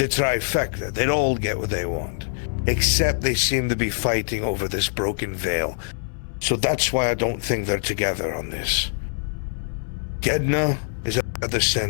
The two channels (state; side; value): silent; right; 63 dB below the other